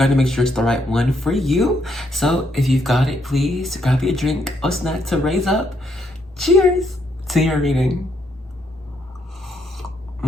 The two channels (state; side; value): normal; both; correlation 0.75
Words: to make sure it's the right one for you. So if you've got it, please grab your drink or snack to raise up. Cheers to your reading.